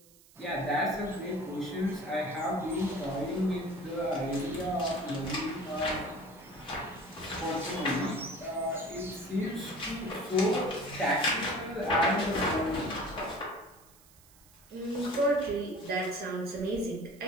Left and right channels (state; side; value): noise; right; hiss, 26 dB below the sound